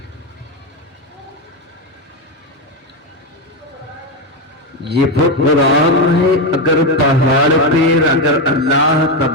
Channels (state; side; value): normal; both; correlation 0.10